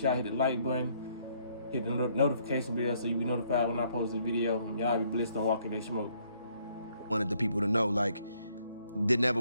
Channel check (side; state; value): both; inverted; correlation -0.68